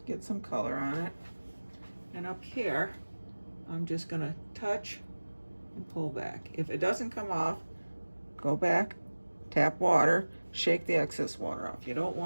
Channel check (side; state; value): both; inverted; correlation -1.00